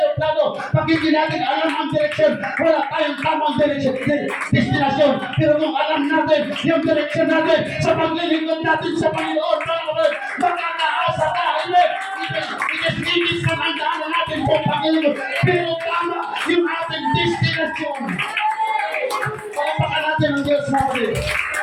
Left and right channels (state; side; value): identical; both; correlation 1.00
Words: pag hindi natin alam ang direksyon, wala tayong tamang destinasyon. Pero kung alam natin yung direksyon natin sa paglilingkod natin sa Panginoon, makakaasa tayo. Inis na ang daanan natin po Panginoon. Pero tama yung ating destinasyon. Palapakan natin ang Diyos natin.